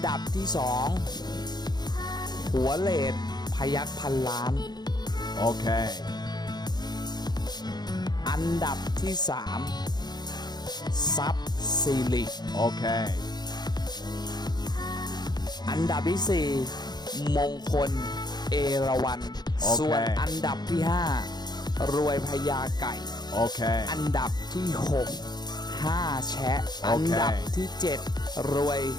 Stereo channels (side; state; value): right; late; 0.20 ms